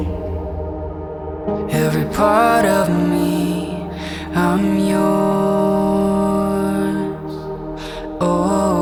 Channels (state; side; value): identical; both; correlation 1.00